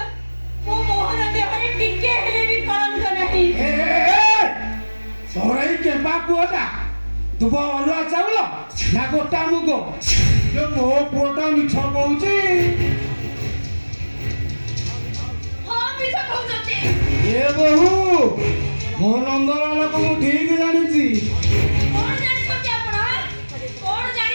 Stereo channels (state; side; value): inverted; both; correlation -1.00